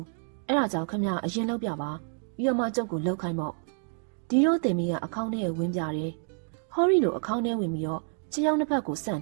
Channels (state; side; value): silent; left; 59 dB below the other